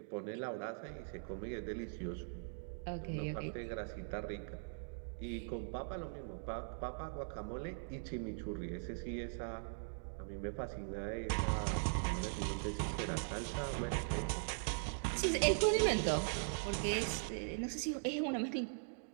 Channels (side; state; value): left; silent; digital silence